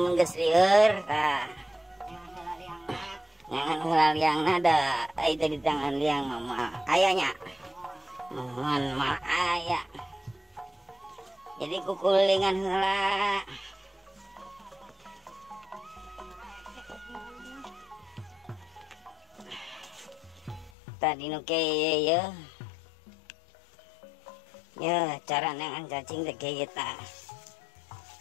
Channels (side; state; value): right; drops out; at 20.7 s